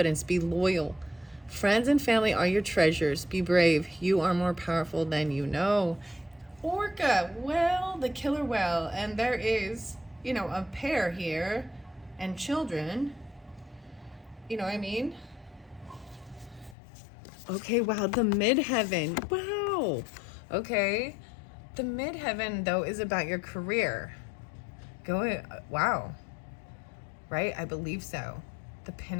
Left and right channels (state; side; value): drops out; right; at 16.8 s